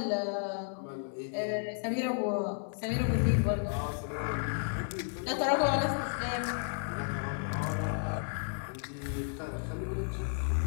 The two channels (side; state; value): right; silent; 56 dB below the other